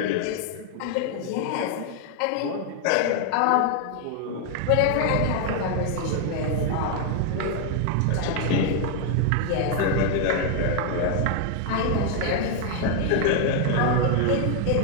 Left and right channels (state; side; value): different; both; correlation 0.00